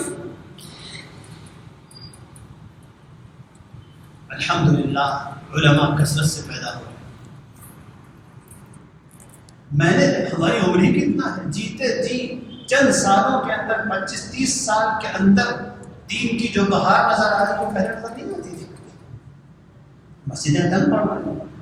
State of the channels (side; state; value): both; identical; correlation 1.00